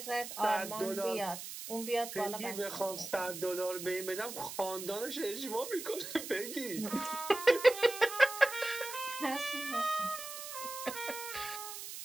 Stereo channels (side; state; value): right; noise; hiss, 9 dB below the sound